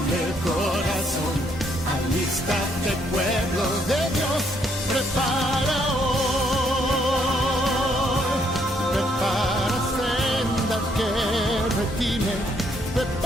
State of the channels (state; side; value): normal; both; correlation 0.71